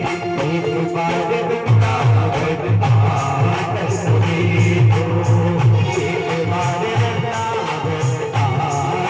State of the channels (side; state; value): both; identical; correlation 1.00